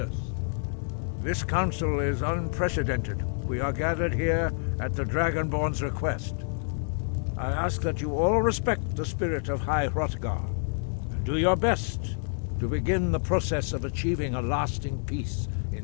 this council is unprecedented. We are gathered here at the Dragonborn's request. I ask that you all respect the spirit of High Hrothgar, and do your best to begin the process of achieving a lasting peace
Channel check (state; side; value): silent; right; digital silence